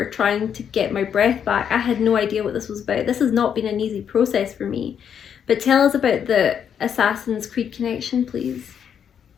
trying to get my breath back. I had no idea what this was about. This has not been an easy process for me. But tell us about the Assassin's Creed connection, please.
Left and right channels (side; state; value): right; quieter; 8.2 dB